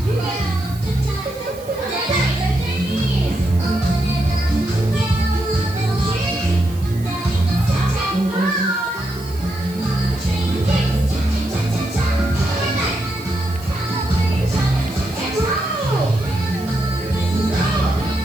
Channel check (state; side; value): noise; right; hiss, 20 dB below the sound